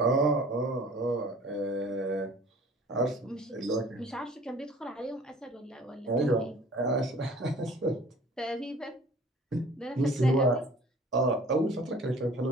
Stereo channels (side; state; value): both; normal; correlation 0.49